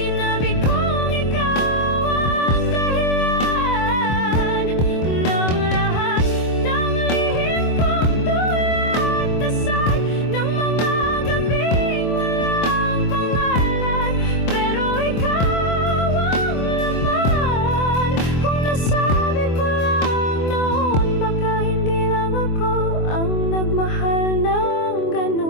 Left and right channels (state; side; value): late; right; 24 ms